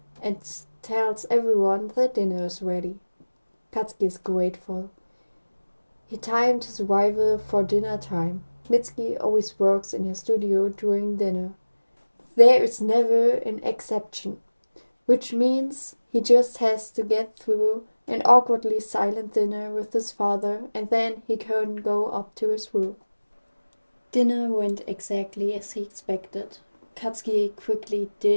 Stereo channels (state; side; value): inverted; both; correlation -1.00